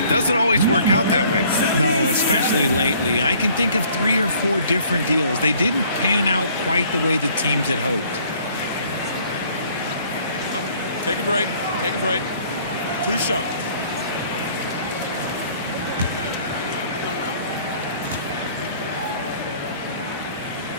doesn't always work out that way. No, especially lately. I can think of 3 or 4 different deals. They didn't pan out quite the way the teams had hoped. Take a break. Take a break. 2 shots.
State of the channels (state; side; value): inverted; both; correlation -0.57